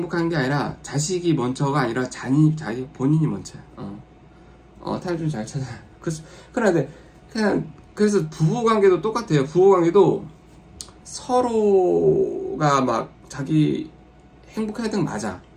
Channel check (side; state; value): both; identical; correlation 1.00